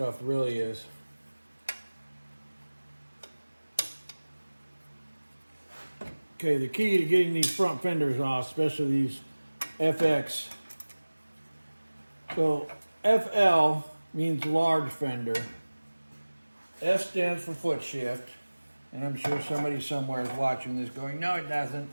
really is. Okay, the key to getting these front fenders off, especially these FX. So FL means large fender. F stands for foot shift. And I'm sure somebody somewhere is watching this going, no, it doesn't.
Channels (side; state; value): both; inverted; correlation -1.00